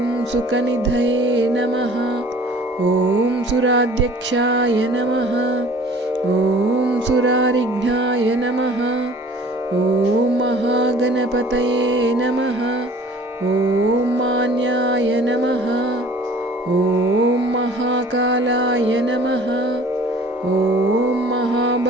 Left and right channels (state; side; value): normal; both; correlation 0.49